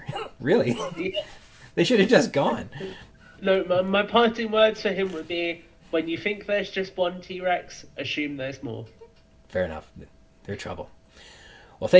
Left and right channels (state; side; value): identical; both; correlation 1.00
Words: Really. Yeah. They should have just gone. No, my parting words for him would be, when you think there's just one T-Rex, assume there's more. Fair enough. They're trouble. Well,